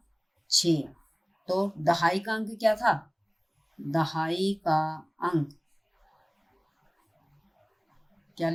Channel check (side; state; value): both; identical; correlation 1.00